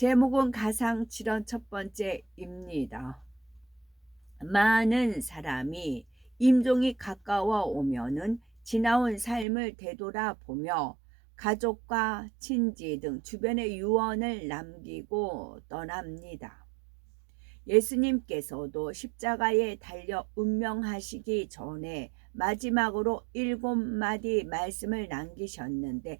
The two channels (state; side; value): drops out; left; at 9.5 s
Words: 가상칠언 첫 번째입니다. 많은 사람이 임종이 가까워 오면은 지나온 삶을 되돌아보며 가족과 친지 등 주변의 유언을 남기고 떠납니다. 예수님께서도 십자가에 달려 운명하시기 전에 마지막으로 7마디 말씀을 남기셨는데